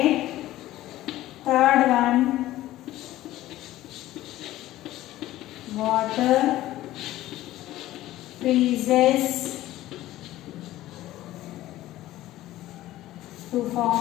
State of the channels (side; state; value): right; quieter; 15.3 dB